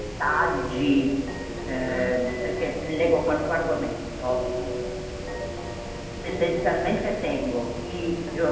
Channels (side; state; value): both; identical; correlation 1.00